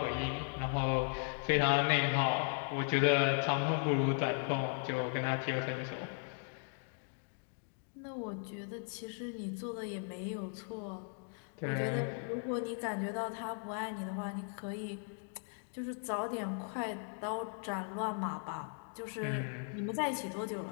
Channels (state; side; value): silent; right; 53 dB below the other